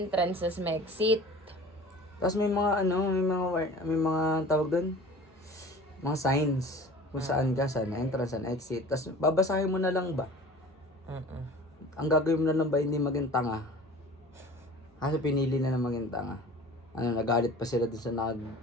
tas may exit. Tapos may mga tawag doon. Mga signs. Kung saan ka, saan na entrance, saan na exit. Tapos babasahin mo na lang ba? Ang gagawin mo na lang ba hindi maging tanga? Kasi pinili na maging tanga. Nagalit pa sila dun sa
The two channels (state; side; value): normal; both; correlation 0.42